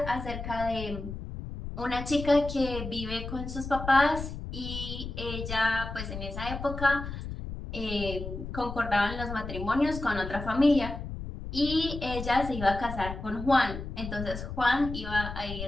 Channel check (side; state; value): left; noise; rumble, 8 dB below the sound